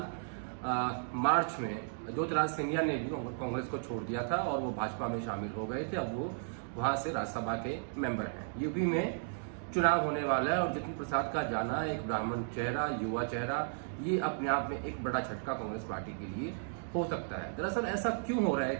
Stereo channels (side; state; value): left; silent; digital silence